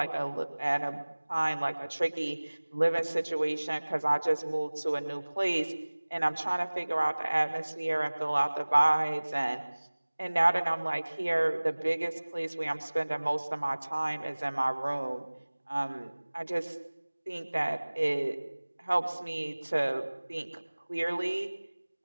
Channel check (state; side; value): inverted; both; correlation -1.00